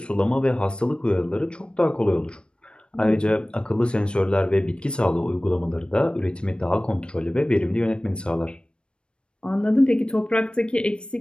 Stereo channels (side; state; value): right; late; 0.056 ms